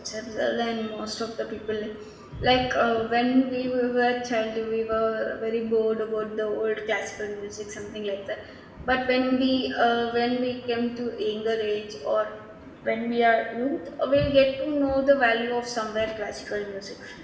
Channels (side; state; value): both; identical; correlation 1.00